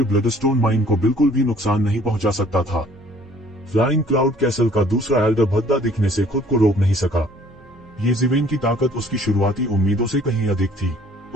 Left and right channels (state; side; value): noise; right; hum, 28 dB below the sound